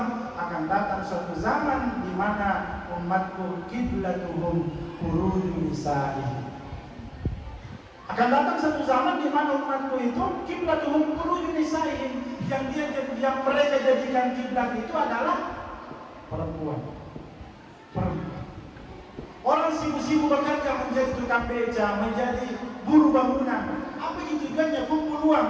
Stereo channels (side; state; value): both; identical; correlation 1.00